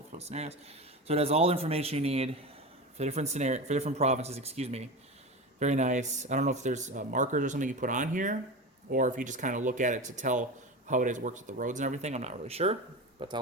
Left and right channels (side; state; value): both; normal; correlation 0.25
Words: for scenarios. So it has all the information you need for different provinces, excuse me. Very nice. I don't know if there's markers or something you put on here, or if you just kind of look at it to tell how it works with the roads and everything. I'm not really sure, but